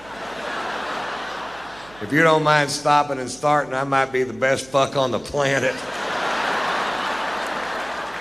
If you don't mind stopping and starting, I might be the best fuck on the planet.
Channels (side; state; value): right; noise; hum, 24 dB below the sound